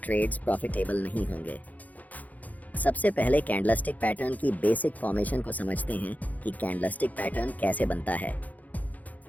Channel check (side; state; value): right; late; 0.078 ms